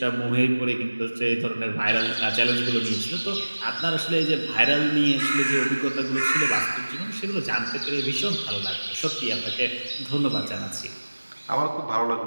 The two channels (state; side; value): inverted; both; correlation -1.00